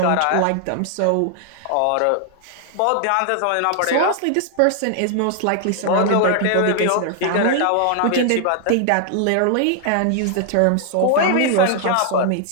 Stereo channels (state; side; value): different; both; correlation 0.00